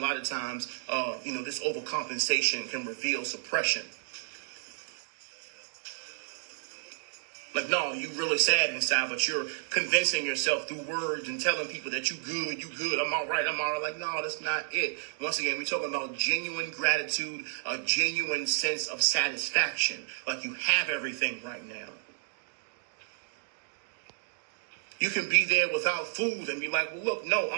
of times, this overcompensation can reveal suppression. Like, no, you really sad inside, but you're convincing yourself through words and telling people that you good, I'm all right. Like, no, that's not it. Once again, we're talking about genuine gratitude, a genuine sense of satisfaction. Like you have everything right now. You can be there without food and be like, well, look, no,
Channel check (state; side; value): silent; left; digital silence